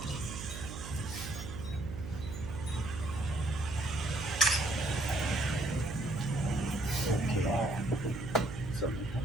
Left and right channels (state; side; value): noise; right; hum, 9 dB below the sound